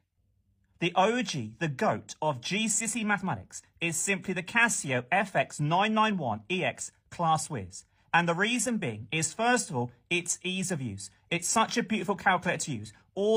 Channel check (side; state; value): both; identical; correlation 1.00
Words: The OG, the GOAT of GCSE mathematics is simply the Casio FX991EX Class Whiz. And the reason being is, first of all, its ease of use. It's such a beautiful calculator to use.